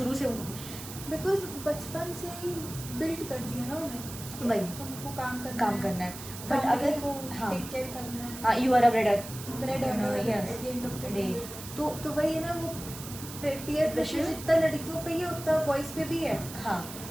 से बिकॉज बचपन से ही बिल्ड कर दिया ना उन्हें, वही तुमको काम करना है। बट family अगर को हाँ टेक केयर करना है, हाँ you are a breader bread you know, earner yes. at the end of the Day. day. तो वही है ना, वो peer pressure जितना लड़कियों पे ही है उतना बॉयज पे भी है, हाँ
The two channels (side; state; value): right; noise; hiss, 12 dB below the sound